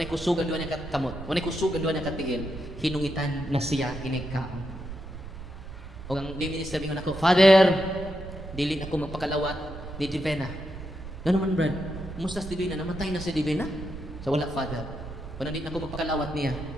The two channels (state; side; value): noise; right; rumble, 11 dB below the sound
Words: kusugan doon niya katamot, wanay kusugan doon niya katigil, hinungitan na siya inigkaon. O ang minister mingon ako, Father, dili ako magpakalawat ni Divina. Ano man, Brad? Kumusta si Divina? Namatay na si Divina? So wala, Father. Kung hindi na ako magpakalawat niya,